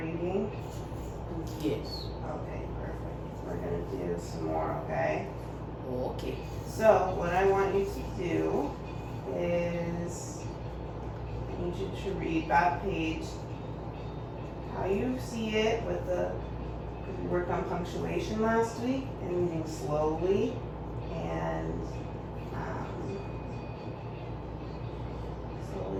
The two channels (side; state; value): both; identical; correlation 1.00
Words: Yes. Okay, perfect. We're gonna do some more, okay? Okay. So, what I want you to do is, I need you to read that page how you see it with the, we worked on punctuation last week and reading slowly and